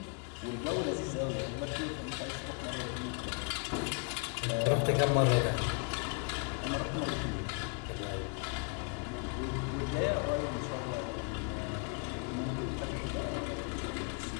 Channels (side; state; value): right; quieter; 35.9 dB